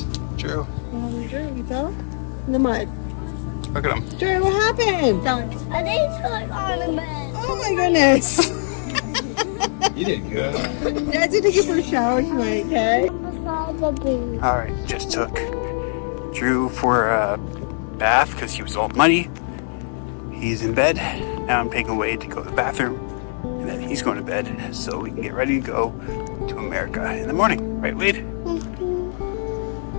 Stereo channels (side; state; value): right; silent; 56 dB below the other